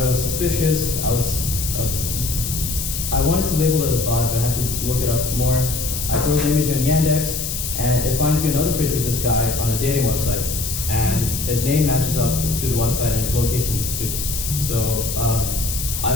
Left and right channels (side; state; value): left; noise; hiss, 4 dB below the sound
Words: it was suspicious. I wanted to label it a bot, but I had to look it up more. I throw the image on Yandex, and it finds me another picture of this guy on a dating website, and his name matches up to the website, and his location does too. So I